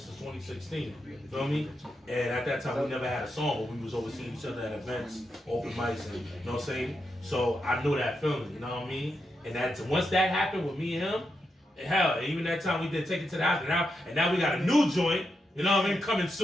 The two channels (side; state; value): both; normal; correlation 0.85